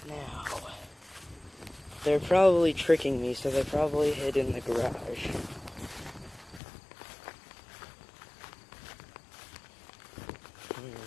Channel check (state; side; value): drops out; right; at 6.6 s